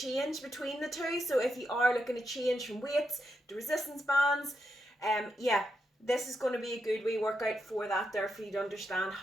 between the two. So if you are looking to change from weights to resistance bands, this is going to be a good wee workout for that there, for you to understand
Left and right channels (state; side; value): normal; both; correlation 0.84